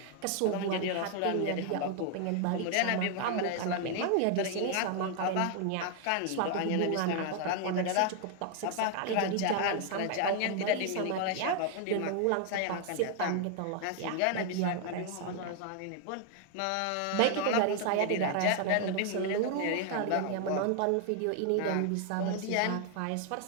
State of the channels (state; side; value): different; both; correlation 0.00